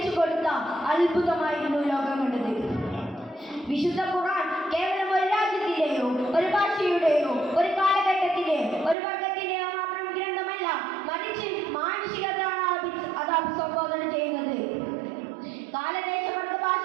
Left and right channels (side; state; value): left; drops out; at 9.0 s